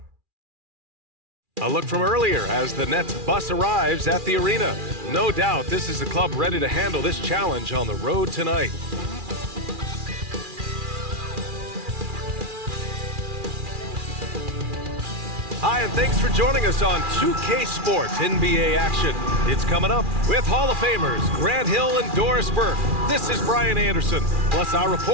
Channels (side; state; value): left; late; 2.4 ms